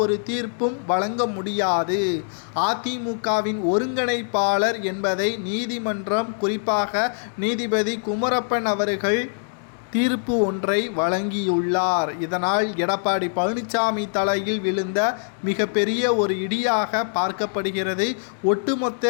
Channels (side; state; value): right; silent; digital silence